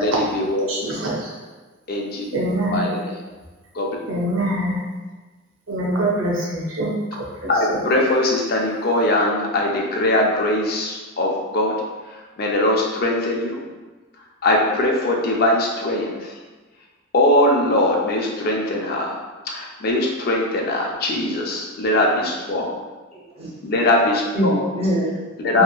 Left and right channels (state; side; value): normal; both; correlation 0.05